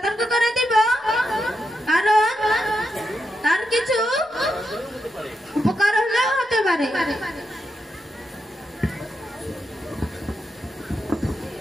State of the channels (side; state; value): both; normal; correlation 0.85